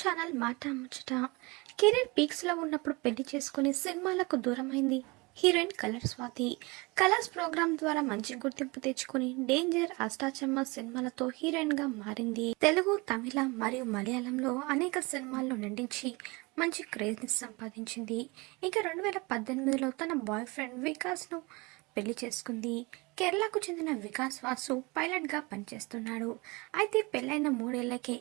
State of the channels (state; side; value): quieter; left; 26.0 dB